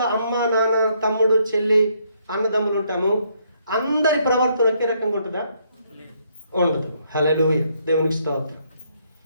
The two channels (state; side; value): inverted; both; correlation -0.71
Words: అమ్మ, నాన్న, తమ్ముడు, చెల్లి, అన్నదమ్ములు ఉంటాము. అందరి ప్రవర్తన ఒకే రకంగా ఉంటుందా? ఉండదు. హల్లెలూయా. దేవునికి స్తోత్రం.